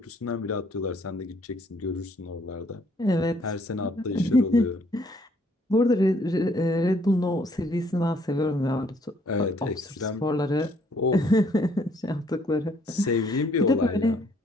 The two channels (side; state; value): both; normal; correlation 0.65